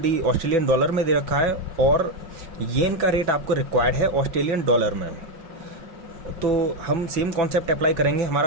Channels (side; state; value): left; late; 5.5 ms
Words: ऑस्ट्रेलियन डॉलर में दे रखा है और येन का रेट आपको रिक्वायर्ड है ऑस्ट्रेलियन डॉलर में। तो हम सेम कॉन्सेप्ट अप्लाई करेंगे।